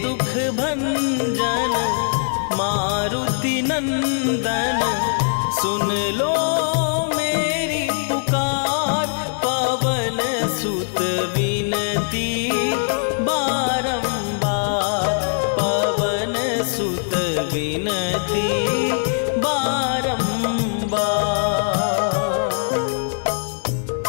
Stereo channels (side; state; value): right; silent; 60 dB below the other